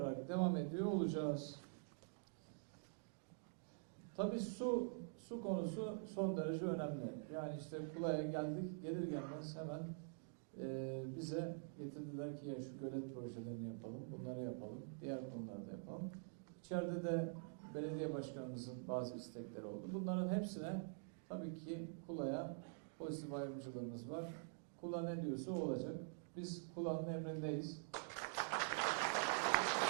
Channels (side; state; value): left; silent; digital silence